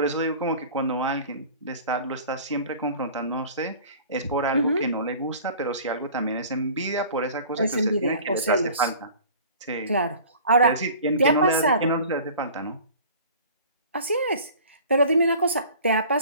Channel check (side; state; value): both; inverted; correlation -0.44